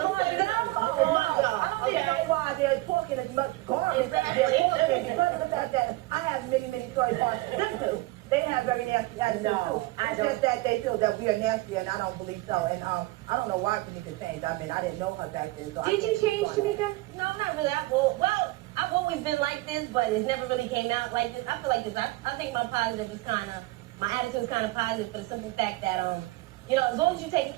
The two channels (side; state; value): left; quieter; 20.2 dB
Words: I don't even know why they're talking as much garbage as they're talking because of the fact that I have many stories on them too. They have very nasty attitudes too. It's just that they feel that we are nasty, and I don't believe so. And I don't know why Tamika changed. I mean, I didn't know her back then. So Did you change, Tamika? No, not really. I've always been like this, but it's never really came out like this. I feel like this. I think my attitude is kind of positive for the simple fact that, you know, as long as you take